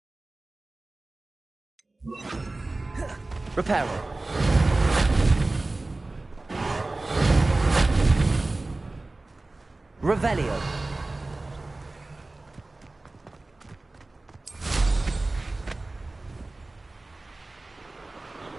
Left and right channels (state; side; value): quieter; left; 3.0 dB